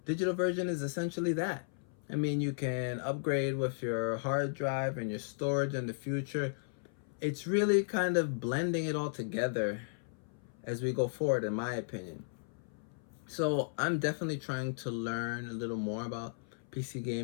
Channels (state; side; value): silent; right; 54 dB below the other